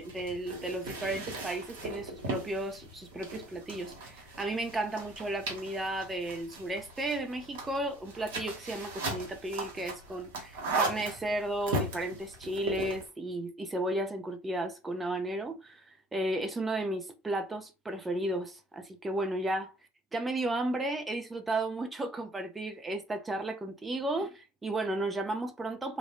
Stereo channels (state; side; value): normal; both; correlation 0.58